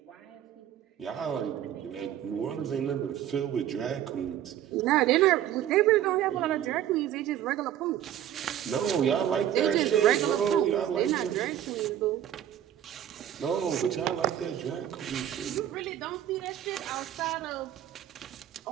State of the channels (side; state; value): left; quieter; 11.0 dB